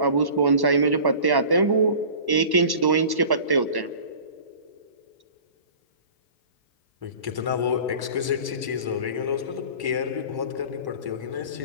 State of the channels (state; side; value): late; left; 1.1 ms